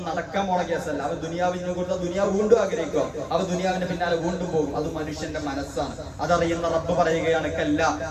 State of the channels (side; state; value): both; identical; correlation 1.00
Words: നടക്കാൻ പോണ കേസല്ല. അവൻ ദുനിയാവിനെ കുറിച്ച് ദുനിയാവ് വീണ്ടും ആഗ്രഹിക്കുക, അവൻ ദുനിയാവിന്റെ പിന്നാലെ വീണ്ടും പോകും. അത് മനുഷ്യന്റെ മനസ്സാണ്, അതറിയുന്ന റബ്ബ് പറയുകയാണ്, കല്ല